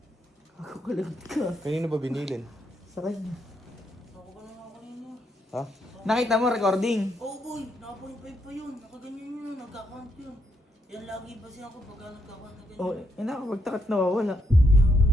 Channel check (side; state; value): both; normal; correlation 0.76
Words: Ako kalagot ka. Kanino ba binilin? Sa kanya. Ako ka na nga kanina. Ha? Nakita mo recording? Oh boy, naka-0.5 pa yun. Nakaganyan yun, nagka-count yun. Yan lagi ba siya ako pagka nagka-count na ganyan. Oh, nakapagtakat nawawala. Ginagawa